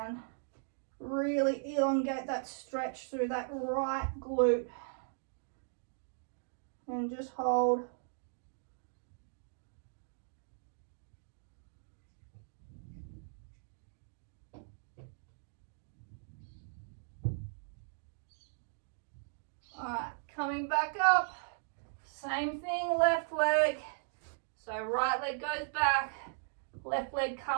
Really elongate that stretch through that right glute. And just hold. All right, coming back up. Same thing, left leg. So right leg goes back, left leg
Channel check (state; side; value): silent; left; digital silence